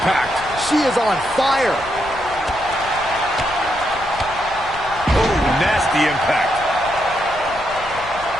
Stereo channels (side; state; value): left; noise; rumble, 17 dB below the sound